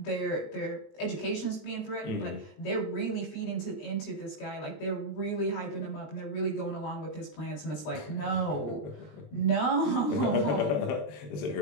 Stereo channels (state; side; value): late; right; 20 ms